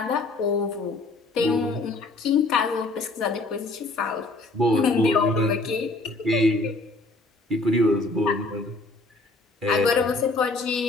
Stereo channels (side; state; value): right; quieter; 3.1 dB